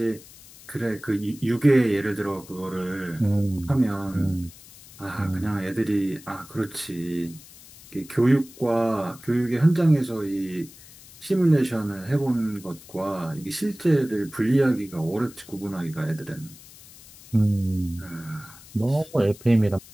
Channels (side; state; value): left; noise; hiss, 20 dB below the sound